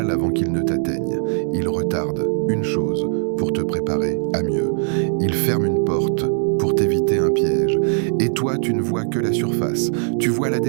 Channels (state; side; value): silent; left; 60 dB below the other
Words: avant qu'il ne t'atteigne. Il retarde une chose pour te préparer à mieux. Il ferme une porte pour t'éviter un piège. Et toi, tu ne vois que la surface. Tu vois la